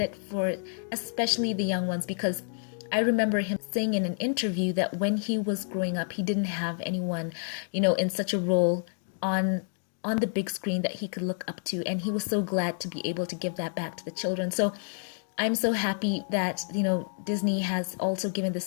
for especially the young ones, because I remember him saying in an interview that when he was growing up, he didn't have anyone, in such a role on the big screen that he could look up to, and he was so glad to be able to give that back to the children. So I'm so happy that, Disney has also given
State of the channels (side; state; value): right; silent; 59 dB below the other